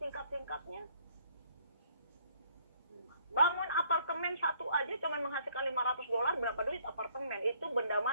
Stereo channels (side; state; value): both; inverted; correlation -0.64